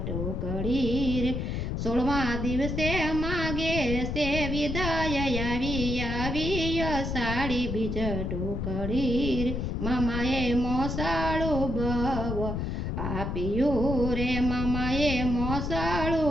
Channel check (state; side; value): noise; left; rumble, 2 dB below the sound